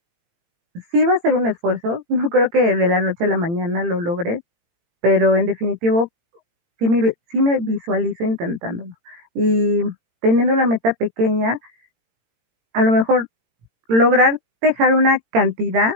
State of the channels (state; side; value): late; left; 18 ms